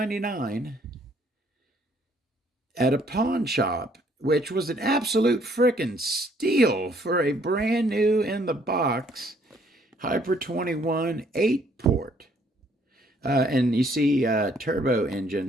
at a pawn shop, which was an absolute frickin' steal for a brand new in the box Hyper 21 8-port. And you see turbo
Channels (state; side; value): normal; both; correlation 0.64